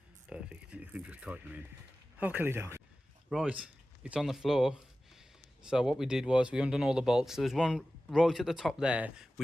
perfect. You can just tighten them in. Okay, down. Right, it's on the floor. So what we did was we undone all the bolts. There was one right at the top there,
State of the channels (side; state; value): both; normal; correlation 0.95